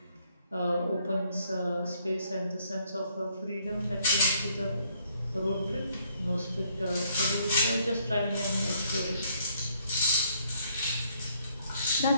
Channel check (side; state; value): both; inverted; correlation -0.67